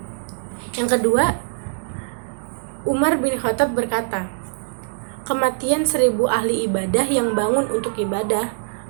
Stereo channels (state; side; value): silent; left; digital silence